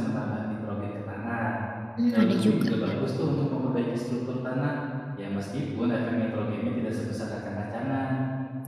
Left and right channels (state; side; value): identical; both; correlation 1.00